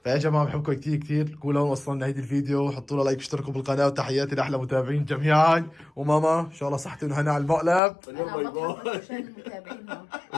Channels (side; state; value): right; drops out; at 7.8 s